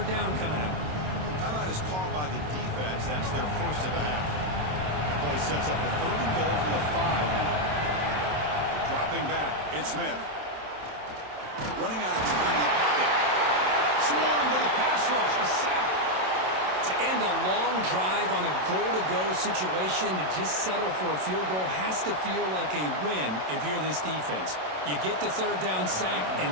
down coming up. Timeout is called by the defense. That's their first of the half. That play sets up a 3rd and goal from the 5 now. Dropping back, it's Smith. Running out of time in the pocket. Swarmed by the pass rush. A sack. To end a long drive on a goal-to-go situation, to just settle for a field goal has to feel like a win if you're this defense. You get the third down sack and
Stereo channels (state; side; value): late; left; 27 ms